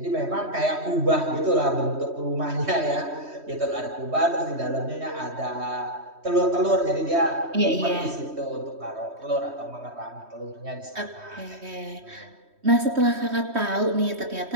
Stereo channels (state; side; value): late; left; 3.1 ms